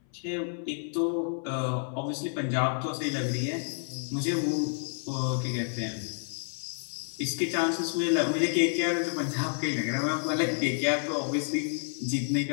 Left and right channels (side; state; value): right; silent; 58 dB below the other